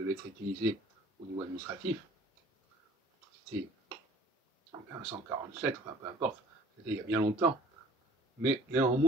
être utilisée au niveau administratif. C'était en 1547, enfin peu importe, c'était il y a bien longtemps. Mais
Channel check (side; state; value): both; normal; correlation 0.51